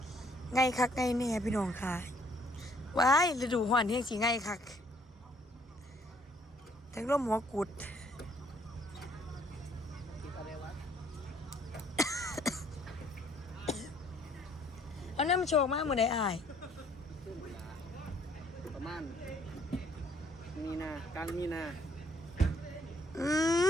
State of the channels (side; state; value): both; normal; correlation 0.64